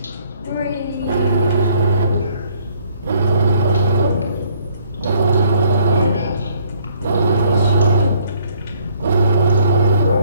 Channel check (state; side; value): inverted; both; correlation -0.63